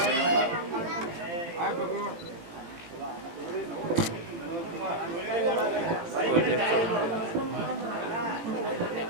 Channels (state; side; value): late; left; 17 ms